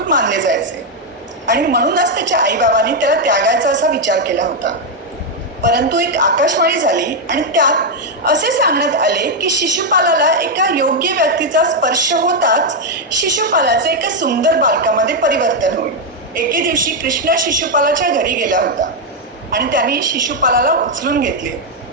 मानले जायचे आणि म्हणूनच त्याच्या आईबाबांनी त्याला त्यागायचा असा विचार केला होता. परंतु एक आकाशवाणी झाली आणि त्यात असे सांगण्यात आले की शिशुपालाला एका योग्य व्यक्तीचा स्पर्श होताच शिशुपालाचे एका सुंदर बालकामध्ये परिवर्तन होईल. एके दिवशी कृष्ण शिशुपालाच्या घरी गेला होता आणि त्याने शिशुपालाला उचलून घेतले.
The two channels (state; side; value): normal; both; correlation 0.01